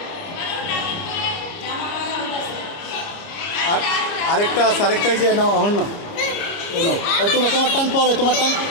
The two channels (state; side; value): late; right; 30 ms